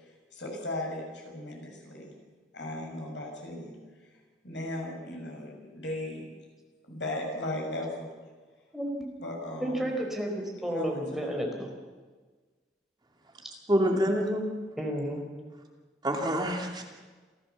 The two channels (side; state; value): both; normal; correlation 0.60